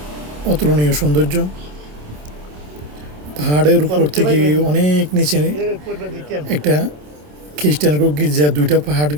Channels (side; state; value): left; late; 27 ms